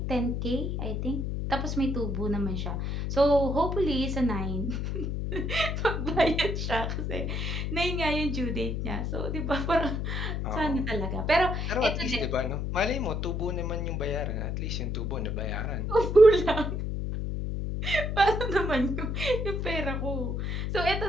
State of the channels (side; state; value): left; noise; hum, 2 dB below the sound